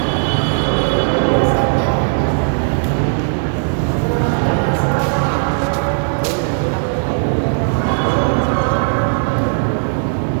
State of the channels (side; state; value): left; silent; digital silence